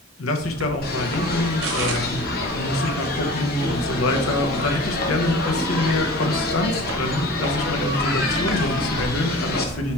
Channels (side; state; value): both; normal; correlation 0.39